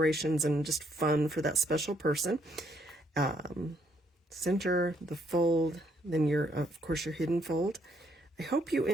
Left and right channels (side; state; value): both; normal; correlation 0.70